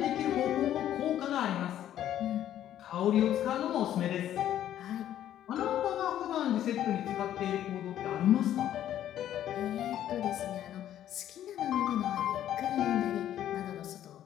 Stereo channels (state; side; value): quieter; right; 11.5 dB